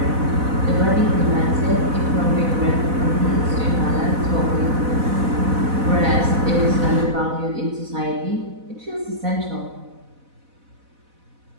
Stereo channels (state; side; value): late; left; 4.0 ms